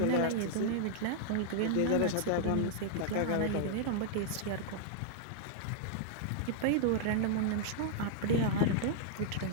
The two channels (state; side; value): different; both; correlation -0.01